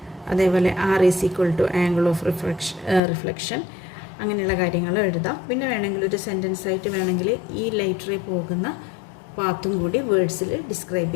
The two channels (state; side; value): drops out; right; at 3.0 s